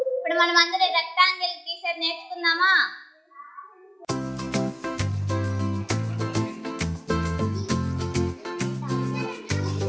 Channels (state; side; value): identical; both; correlation 1.00